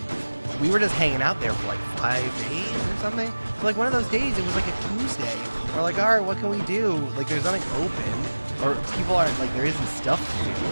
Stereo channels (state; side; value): inverted; both; correlation -1.00